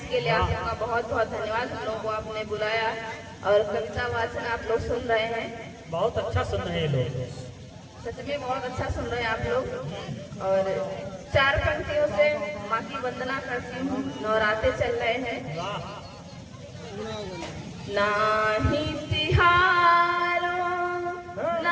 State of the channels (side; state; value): both; identical; correlation 1.00